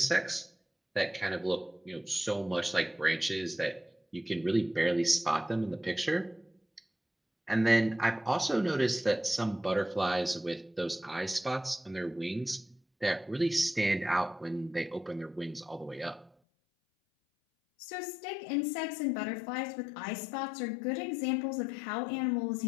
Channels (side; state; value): right; drops out; at 16.3 s